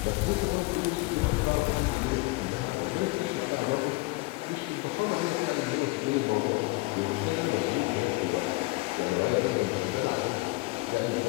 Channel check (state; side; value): quieter; right; 23.9 dB